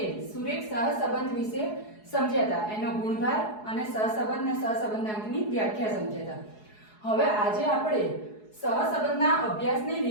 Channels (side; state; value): right; late; 4.7 ms